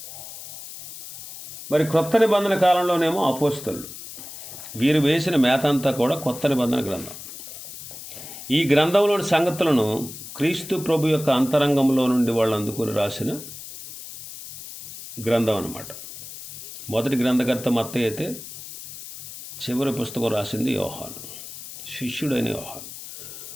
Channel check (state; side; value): noise; left; hiss, 13 dB below the sound